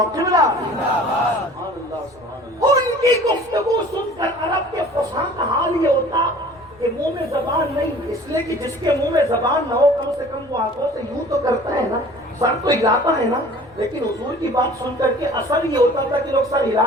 قبلہ۔ ان کی گفتگو سن کر عرب کے فصحاء کا حال یہ ہوتا کہ منہ میں زبان نہیں، اس لیے کہ جس کے منہ میں زبان نہ ہو کم سے کم وہ آنکھوں سے یوں تو کرتا ہے نا، سر تو ہلاتا ہے نا۔ لیکن حضور کی بات سن کر کے اثر یہ ہوتا تھا کہ لوگ سر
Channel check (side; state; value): left; noise; rumble, 28 dB below the sound